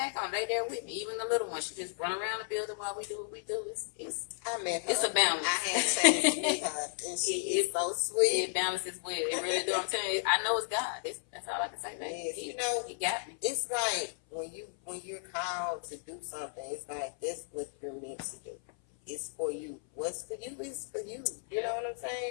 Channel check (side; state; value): right; silent; 55 dB below the other